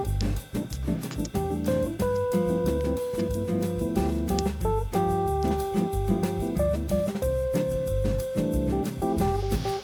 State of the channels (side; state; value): both; identical; correlation 1.00